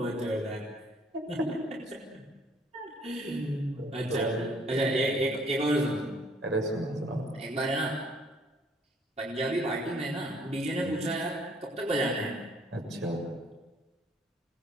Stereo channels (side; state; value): both; normal; correlation 0.61